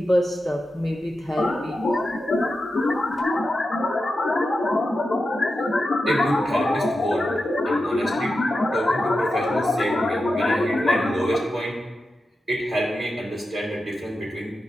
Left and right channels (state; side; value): normal; both; correlation 0.90